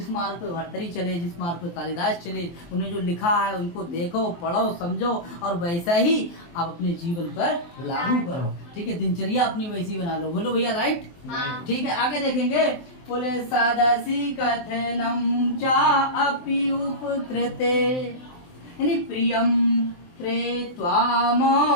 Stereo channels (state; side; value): late; right; 23 ms